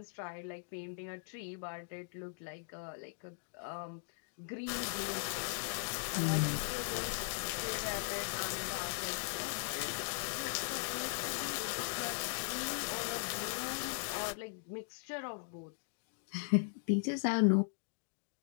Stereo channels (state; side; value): silent; right; digital silence